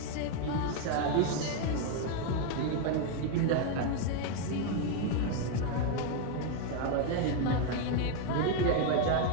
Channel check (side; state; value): both; different; correlation 0.01